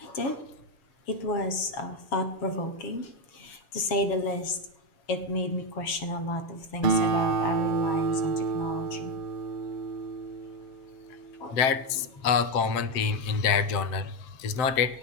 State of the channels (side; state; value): right; late; 7.3 ms